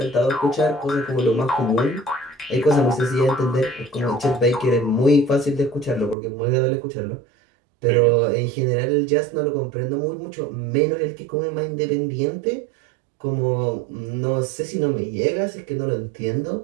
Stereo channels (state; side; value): drops out; left; at 6.2 s